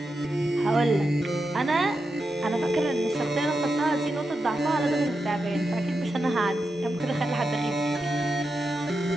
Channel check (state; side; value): normal; both; correlation 0.88